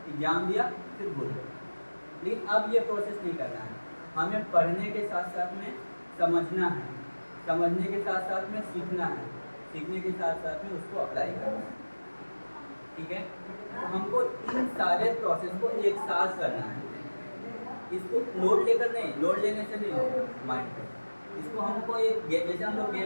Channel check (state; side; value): inverted; both; correlation -1.00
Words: एग्जाम दिया, फिर भूल गए। लेकिन अब ये प्रोसेस नहीं करना है, हमें पढ़ने के साथ साथ में समझना है, समझने के साथ साथ में सीखना है, सीखने के साथ साथ में उसको अप्लाई करना है। ठीक है, तो हमको इन सारे प्रोसेस को एक साथ करना है। इसको लोड लेकर नहीं, लोड लेने से नहीं होगा माइंड पे। इसको हमको एक जैसे हम लोग